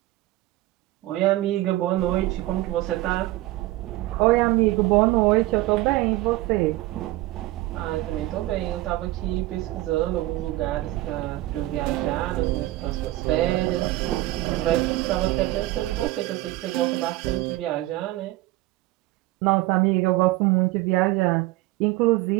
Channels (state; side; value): quieter; left; 17.6 dB